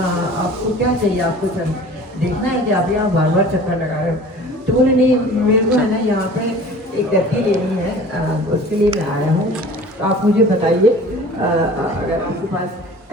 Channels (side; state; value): both; normal; correlation 0.44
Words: क्या चाहिए, आपको चल देखना है कि आप यहाँ बार बार चक्कर लगा रहे हो। तो बोले नहीं, मेरे को है ना यहाँ पे एक गद्दी लेनी है, उसके लिए मैं आया हूँ, तो आप मुझे बताइए अगर आपके पास